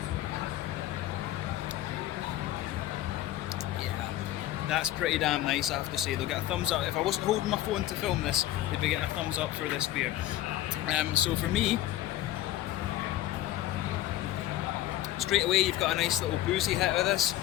Yeah, that's pretty damn nice, I have to say. They'll get a thumbs up. If I wasn't holding my phone to film this, they'd be getting a thumbs up for this beer. So for me, straight away you've got a nice little boozy hit of this.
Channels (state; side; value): quieter; right; 14.0 dB